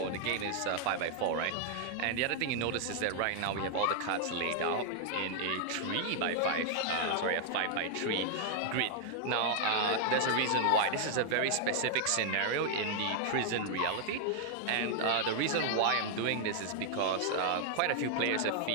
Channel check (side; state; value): both; different; correlation 0.00